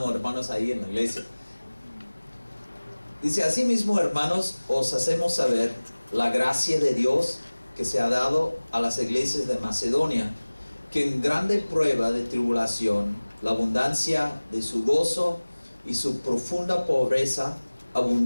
hermanos, ahí en la iglesia. Dice: asimismo, hermanos, os hacemos saber la gracia de Dios que se ha dado a las iglesias de Macedonia, que en grande prueba de tribulación, la abundancia de su gozo y su profunda pobreza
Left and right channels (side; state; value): both; inverted; correlation -1.00